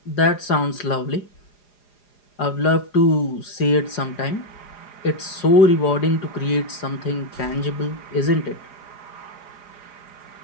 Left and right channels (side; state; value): right; late; 4.9 ms